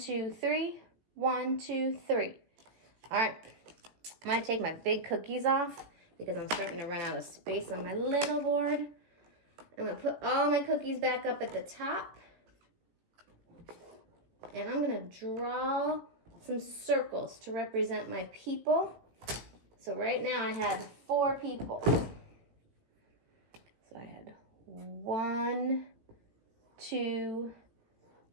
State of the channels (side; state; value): left; late; 17 ms